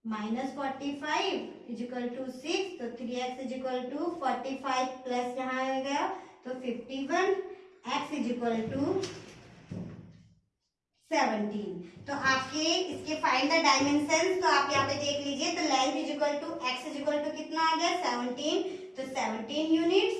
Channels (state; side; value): identical; both; correlation 1.00